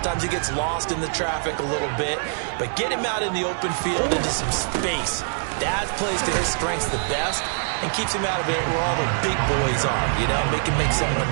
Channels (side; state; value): left; silent; digital silence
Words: he gets lost in the traffic a little bit, but get him out in the open field into some space. That plays to his strengths the best and keeps him out of it where all the big boys are, you know, make someone